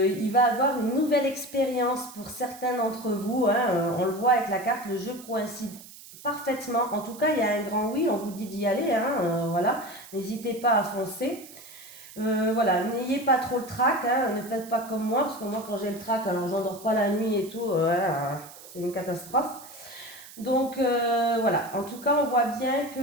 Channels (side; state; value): right; noise; hiss, 18 dB below the sound